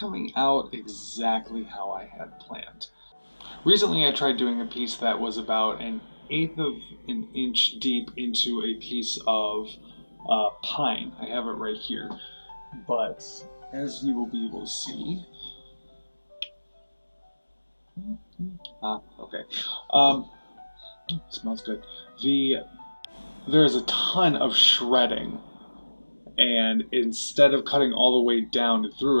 out exactly how I had planned. Recently I tried doing a piece that was about an eighth of an inch deep into a piece of pine. I have it right here. But as you will be able to see, okay. Smells good. There's a ton of shredding, and instead of cutting all the way down and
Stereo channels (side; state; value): both; inverted; correlation -1.00